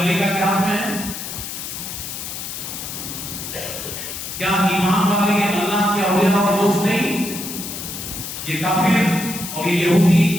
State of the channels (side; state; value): left; noise; hiss, 7 dB below the sound